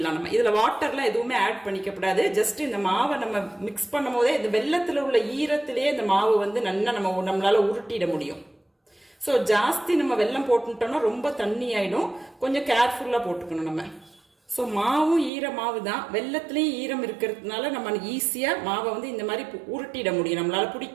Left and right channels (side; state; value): left; drops out; at 15.3 s